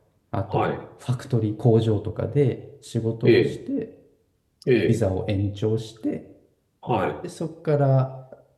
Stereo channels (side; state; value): both; identical; correlation 1.00